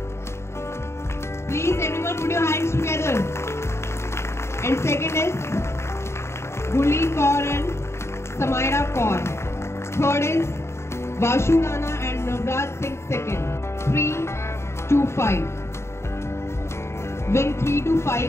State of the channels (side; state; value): right; late; 0.13 ms